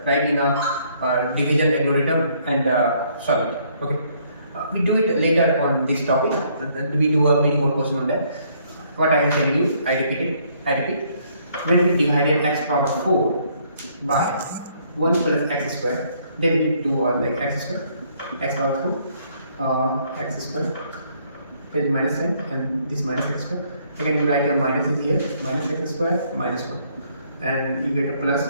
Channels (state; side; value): inverted; both; correlation -0.67